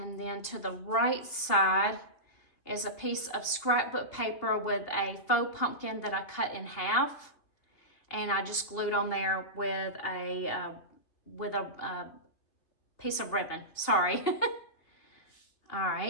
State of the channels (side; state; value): right; late; 2.8 ms